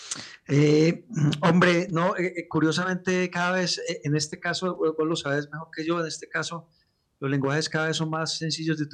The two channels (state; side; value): identical; both; correlation 1.00